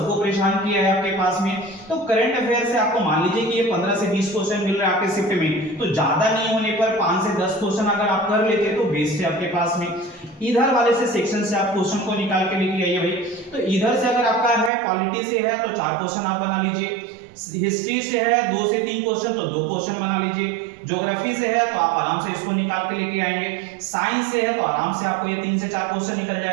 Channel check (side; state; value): left; drops out; at 14.7 s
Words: परेशान किया है आपके पास में। तो करंट अफेयर से आपको मान लीजिए कि ये 15 से 20 क्वेश्चन मिल रहा है आपके शिफ्ट में, तो ज्यादा नहीं होने पर 5 से 10 क्वेश्चन अगर आप कर लेते तो बेस्ट है आपके पास में। इधर वाले से सेक्शन से आप क्वेश्चन को निकाल के लेके आइए भाई, तो इधर से अगर आपका है पॉलिटी से है तो 4 क्वेश्चन आप बना लीजिए, हिस्ट्री से है 2 से 3 क्वेश्चन तो 2 क्वेश्चन बना लीजिए, ज्योग्राफी से है तो आप आराम से इसको निकाल के लेके आएंगे, साइंस से है तो आराम से आपको ये 3 से 4 क्वेश्चन निकल